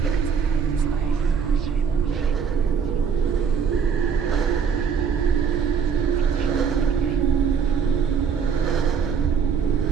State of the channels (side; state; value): left; quieter; 6.7 dB